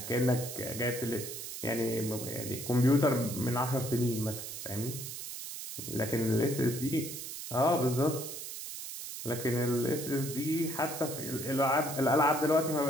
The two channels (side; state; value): right; noise; hiss, 8 dB below the sound